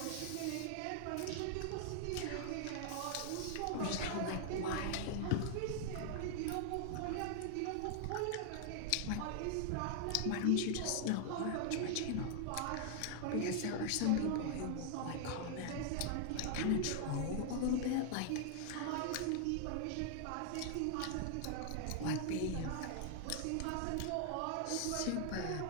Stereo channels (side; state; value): both; different; correlation 0.00